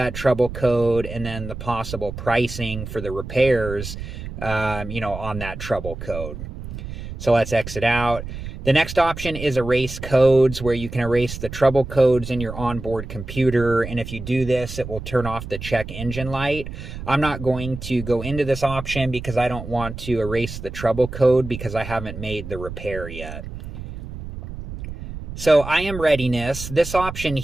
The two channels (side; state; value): right; noise; rumble, 9 dB below the sound